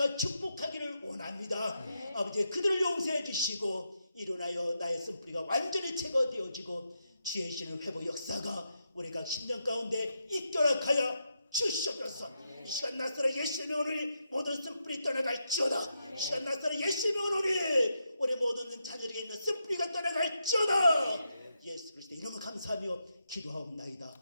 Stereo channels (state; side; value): inverted; both; correlation -0.84